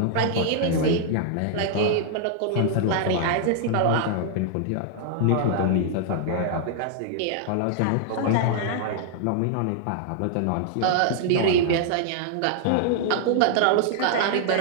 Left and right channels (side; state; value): both; different; correlation -0.01